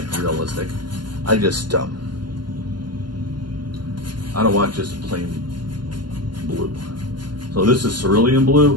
I just, I don't want just plain blue. So this is cerulean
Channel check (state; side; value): late; left; 0.71 ms